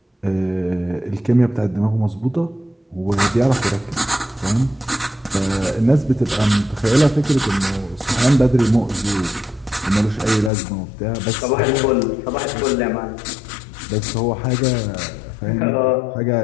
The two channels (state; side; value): drops out; right; at 10.5 s